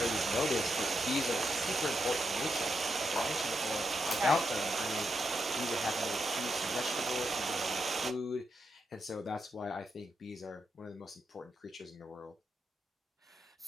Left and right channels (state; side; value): normal; both; correlation 0.83